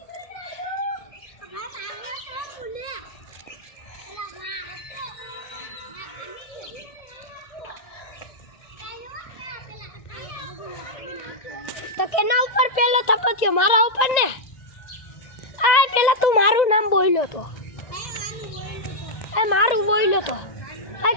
તો કેના ઉપર પેલો થપ્પો થયો? મારા ઉપર ને? આ પેલા તું મારું નામ બોલ્યો તો, એ મારું બોલ્યો તો, આ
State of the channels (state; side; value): late; right; 1.9 ms